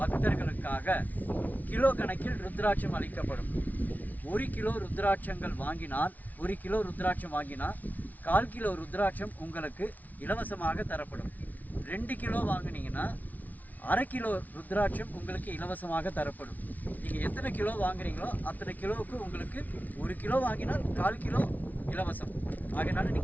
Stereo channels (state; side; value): late; right; 0.076 ms